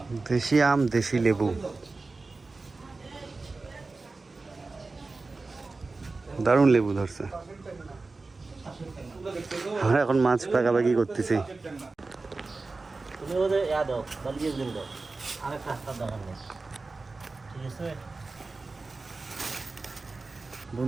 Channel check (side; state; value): left; quieter; 3.7 dB